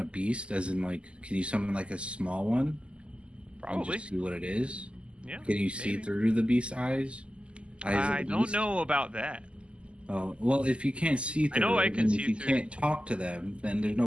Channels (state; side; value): late; left; 0.053 ms